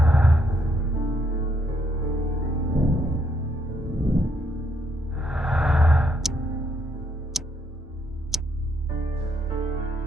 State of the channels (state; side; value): normal; both; correlation 0.73